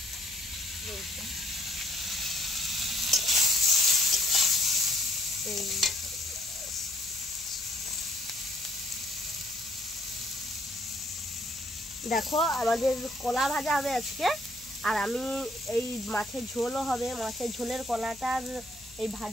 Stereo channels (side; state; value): left; noise; hum, 24 dB below the sound